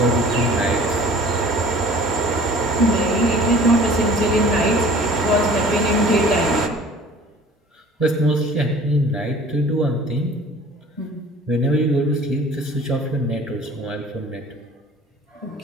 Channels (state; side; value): normal; both; correlation 0.47